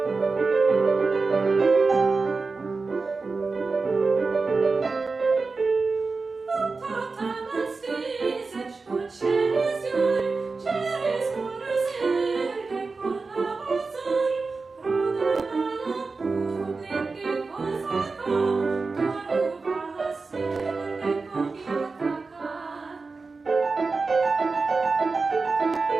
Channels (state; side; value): quieter; left; 4.1 dB